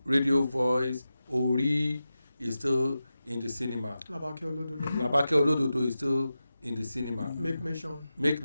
Radio Voice, Ori is still in the cinema. Labake Olododo is still in the cinema. Make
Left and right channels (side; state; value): both; inverted; correlation -0.92